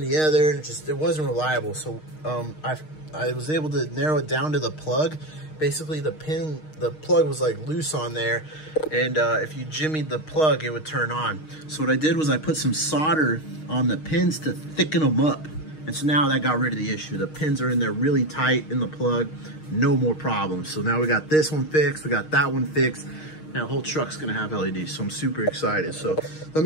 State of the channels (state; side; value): late; right; 6.4 ms